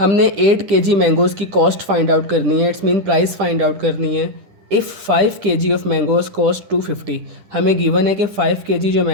8 kg मैंगोज़ की कॉस्ट फाइंड आउट करनी है, it's mean price find out करनी है। If 5 kg of mangoes cost 250, हमें गिवन है कि 5 kg जो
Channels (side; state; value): left; late; 10 ms